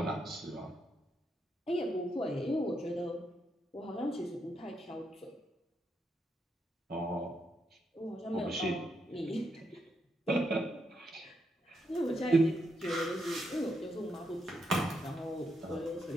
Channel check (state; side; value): normal; both; correlation 0.80